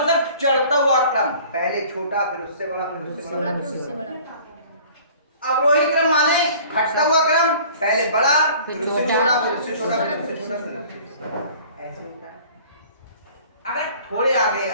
चढ़ता हुआ क्रम, पहले छोटा फिर उससे बड़ा फिर उससे बड़ा फिर उससे बड़ा। अवरोही क्रम माने घटता हुआ क्रम, पहले बड़ा फिर उससे छोटा फिर उससे छोटा फिर उससे छोटा, ऐसे होता है। अगर थोड़े आगे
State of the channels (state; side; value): inverted; both; correlation -0.49